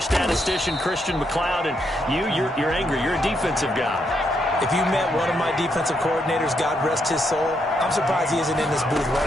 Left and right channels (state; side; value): normal; both; correlation 0.78